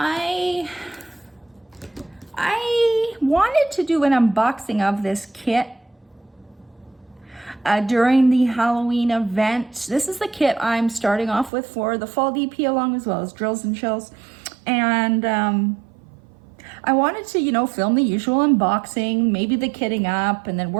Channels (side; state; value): left; drops out; at 11.5 s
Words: wanted to do an unboxing of this kit during the Halloween event. This is the kit I'm starting off with for the fall DP, along as well as drills and chills. And I wanted to, film the usual unboxing, maybe the kitting up and then